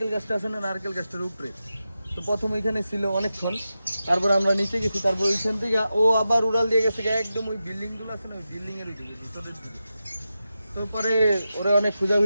গাছটা আছে না, নারকেল গাছটার উপরে। তো প্রথম ওইখানে ছিল অনেকক্ষণ, তারপর আমরা নিচে গেছি, তারপর ওইখান থেকে ও আবার উড়াল দিয়ে গেছে একদম ওই বিল্ডিংগুলো আছে না, ওই বিল্ডিংয়ের ভিতরের দিকে। তো পরে ওরা অনেক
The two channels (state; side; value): inverted; both; correlation -0.91